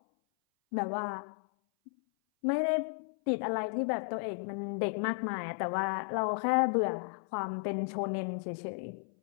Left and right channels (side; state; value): right; silent; 55 dB below the other